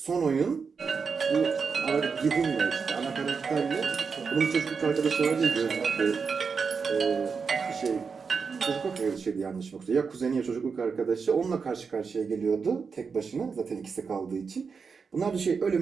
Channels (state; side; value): quieter; left; 5.5 dB